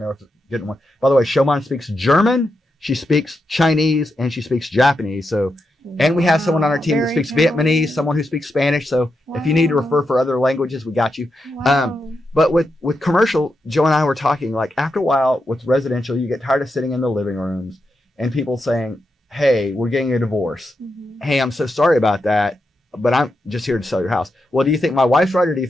know if it's a good one. By the way, Shoman speaks German, she speaks Chinese, and she speaks Japanese. So, and we have someone on our team that speaks Vietnamese, someone who speaks Spanish. So if you need to refer for other languages, we got you. But with commercial, Joe and I were talking, like after a while with residential, you get tired of sitting in the living rooms and people saying, hey, we're getting a divorce. Mm-hmm. Hey, I'm so sorry about that, but I'm just here to sell your house. Well, do you think my wife's right or do you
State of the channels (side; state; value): both; normal; correlation 0.86